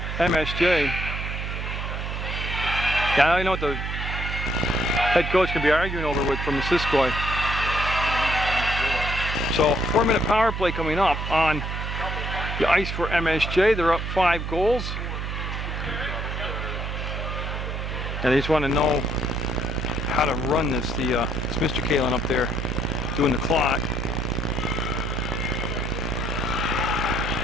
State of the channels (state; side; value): noise; right; hum, 4 dB below the sound